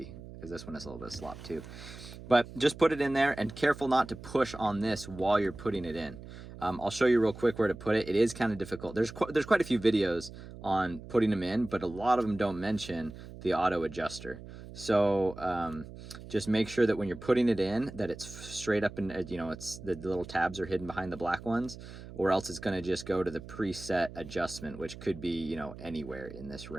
because this one has a little bit of slop too. But just put it in there, and careful not to push on this while you're putting it in. I'll show you real quick where to put it. It is kind of difficult. There's quite a few videos on putting them in, but a lot of them don't mention the auto adjuster. So just make sure that when you're putting it in, that it's straight up, and it's the little tabs are hidden behind the black ones, or else it's going to just go to the preset adjustment, which could be anywhere in this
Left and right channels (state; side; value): noise; right; hum, 14 dB below the sound